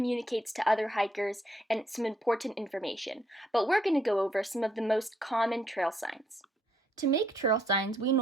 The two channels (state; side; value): normal; both; correlation 0.71